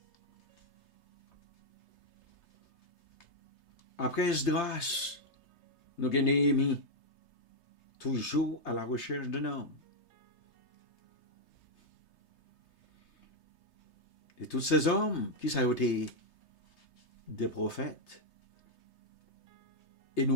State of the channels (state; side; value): late; right; 3.3 ms